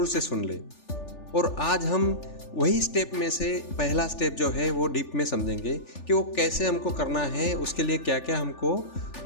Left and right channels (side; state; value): right; late; 3.4 ms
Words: से सुन ले। और आज हम वही स्टेप में से पहला स्टेप जो है वो डीप में समझेंगे कि वो कैसे हमको करना है, उसके लिए क्या क्या हमको